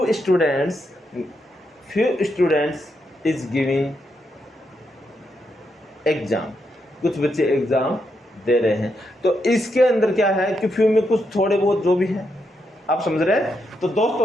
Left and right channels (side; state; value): both; normal; correlation 0.81